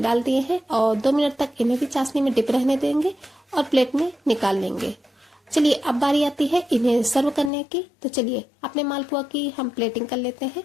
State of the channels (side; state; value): right; drops out; at 7.5 s